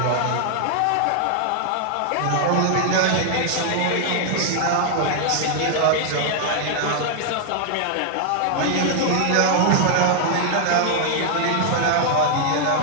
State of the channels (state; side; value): different; both; correlation 0.00